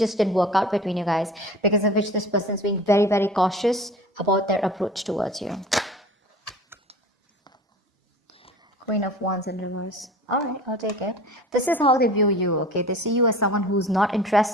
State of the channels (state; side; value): normal; both; correlation 0.41